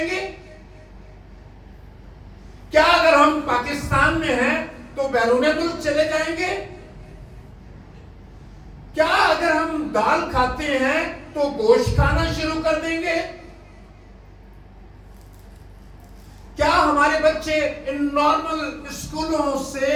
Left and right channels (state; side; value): identical; both; correlation 1.00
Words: क्या अगर हम पाकिस्तान में हैं तो बैरून मुल्क चले जाएंगे? क्या अगर हम दाल खाते हैं तो गोश्त खाना शुरू कर देंगे? क्या हमारे बच्चे इन नॉर्मल स्कूलों